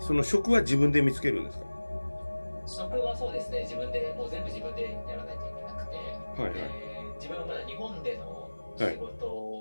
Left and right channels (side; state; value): both; inverted; correlation -1.00